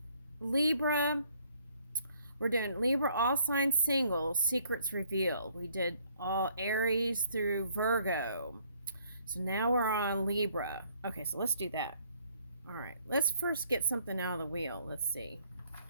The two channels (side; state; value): both; inverted; correlation -0.65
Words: Libra. We're doing Libra all signs singles, secrets revealed. We did all Aries through Virgo. So now we're on Libra. Okay, so let's do that. All right, let's first get something out of the wheel. Let's see.